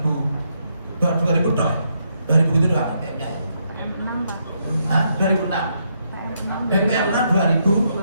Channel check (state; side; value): inverted; both; correlation -0.77